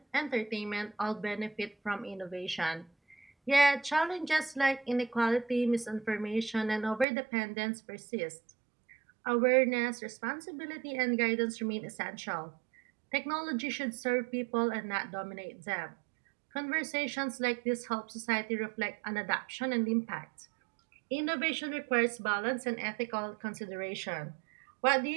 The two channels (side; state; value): left; drops out; at 7.1 s